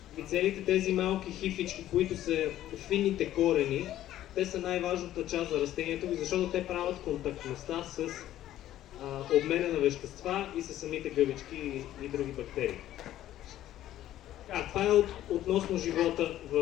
И целите тези малки хифички, които са финните корени, те са най-важната част за растението, защото те правят контактността с обмена на вещества и с самите гъбички и други бактерии. Това е относно живота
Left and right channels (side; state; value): right; quieter; 13.0 dB